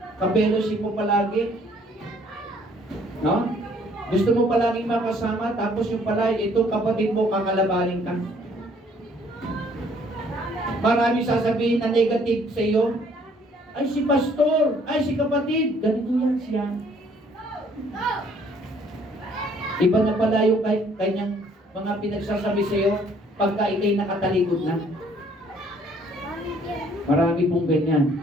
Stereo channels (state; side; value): normal; both; correlation 0.61